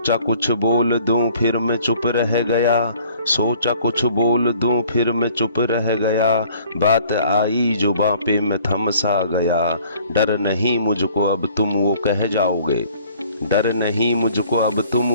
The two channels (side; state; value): both; inverted; correlation -0.56